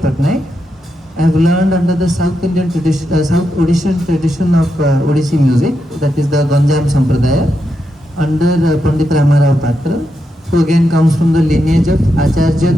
I have learned under the South Indian tradition, South Odishan tradition of Odissi music, that is the Ganjam Sampradaya, under Pandit Ramarao Patra, who again comes from the lineage of Acharya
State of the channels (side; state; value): both; normal; correlation 0.84